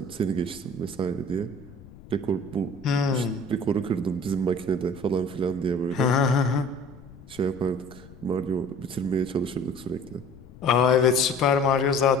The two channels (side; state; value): left; noise; rumble, 20 dB below the sound